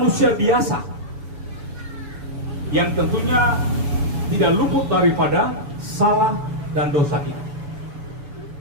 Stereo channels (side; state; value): left; late; 7.1 ms